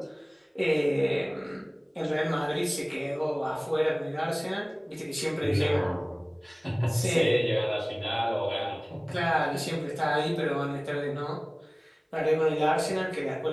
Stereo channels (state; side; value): identical; both; correlation 1.00